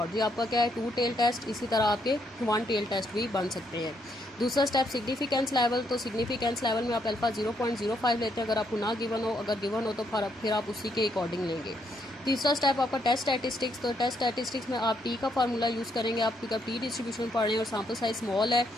ये आपका क्या है, 2 टेल टेस्ट। इसी तरह आपके 1 टेल टेस्ट भी बन सकते हैं। दूसरा स्टेप सिग्निफिकेंस लेवल। तो सिग्निफिकेंस लेवल में आप अल्फा 0.05 लेते हैं अगर आपको ना गिवन हो, अगर गिवन हो तो फिर आप उसी के अकॉर्डिंग लेंगे। तीसरा स्टेप आपका टेस्ट स्टैटिस्टिक्स। तो टेस्ट स्टैटिस्टिक्स में आप टी का फार्मूला यूज़ करेंगे। आप क्योंकि टी डिस्ट्रीब्यूशन पढ़ रहे हैं और सैम्पल साइज स्मॉल है,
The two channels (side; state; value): both; normal; correlation 0.74